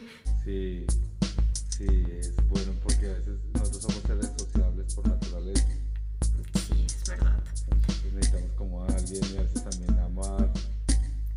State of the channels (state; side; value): identical; both; correlation 1.00